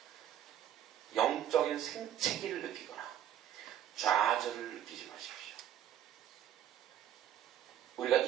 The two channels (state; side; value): quieter; left; 10.7 dB